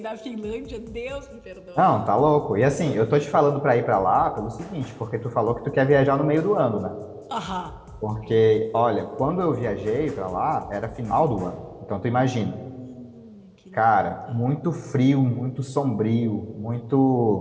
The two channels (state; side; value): identical; both; correlation 1.00